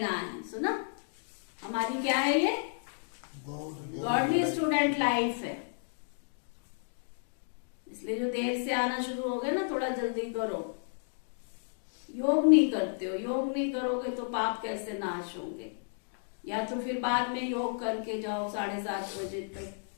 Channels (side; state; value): right; silent; digital silence